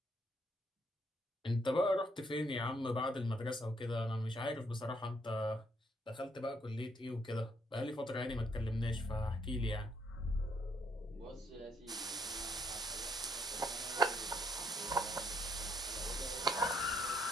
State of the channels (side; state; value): both; normal; correlation 0.71